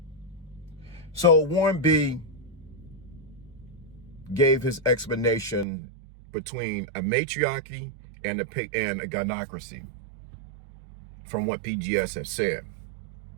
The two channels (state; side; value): drops out; left; at 5.7 s